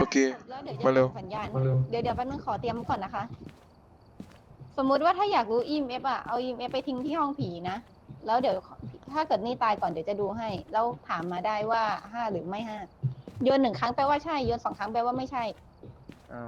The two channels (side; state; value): both; identical; correlation 1.00